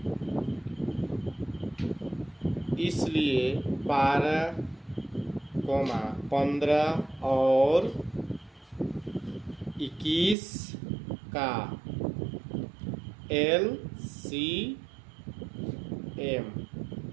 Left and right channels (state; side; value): drops out; left; at 10.4 s